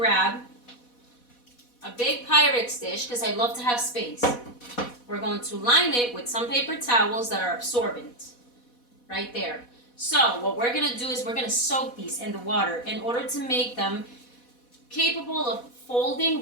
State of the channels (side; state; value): right; late; 4.1 ms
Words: a big Pyrex dish because I love to have space. We're going to line it with some paper towels that are absorbent. Right there. So what we're going to do is we're going to soak these in the water in order to make them capable of folding